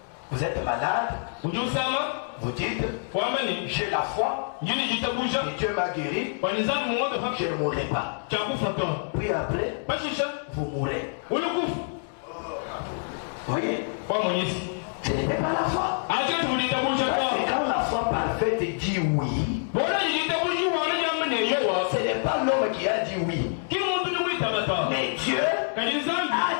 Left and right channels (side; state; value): right; silent; digital silence